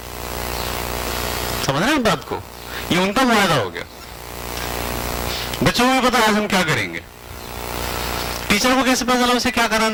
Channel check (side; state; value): both; identical; correlation 1.00